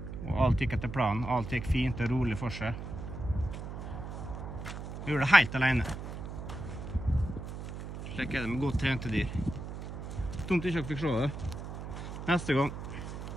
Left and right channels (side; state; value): right; noise; hum, 8 dB below the sound